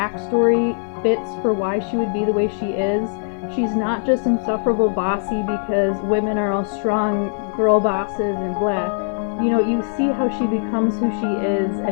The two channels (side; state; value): right; silent; 55 dB below the other